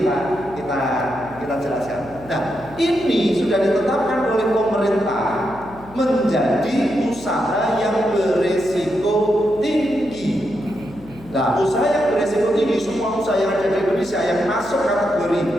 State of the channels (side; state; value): left; noise; hum, 20 dB below the sound